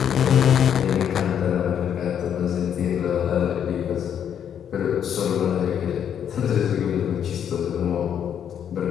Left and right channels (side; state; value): right; quieter; 8.9 dB